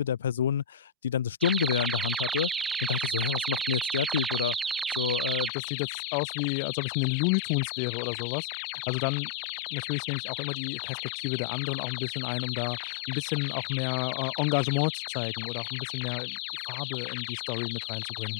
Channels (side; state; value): right; drops out; at 5.5 s